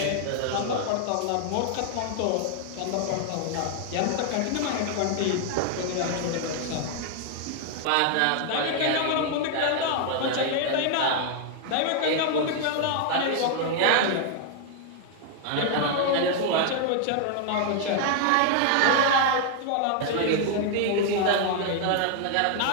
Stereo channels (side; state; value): both; different; correlation 0.00